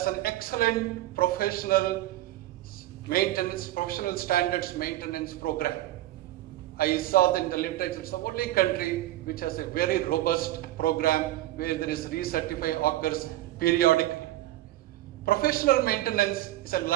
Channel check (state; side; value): quieter; left; 15.3 dB